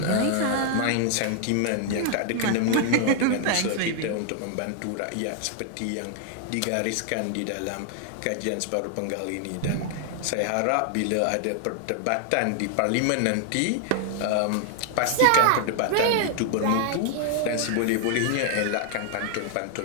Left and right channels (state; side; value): different; both; correlation 0.00